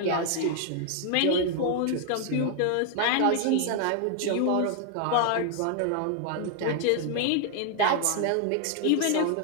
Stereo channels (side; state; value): both; different; correlation 0.00